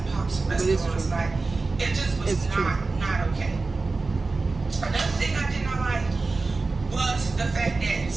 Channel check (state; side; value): quieter; left; 3.7 dB